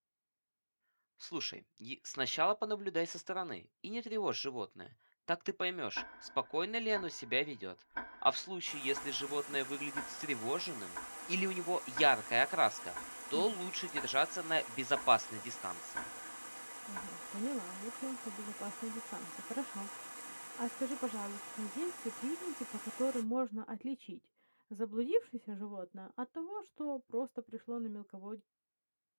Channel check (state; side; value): inverted; both; correlation -1.00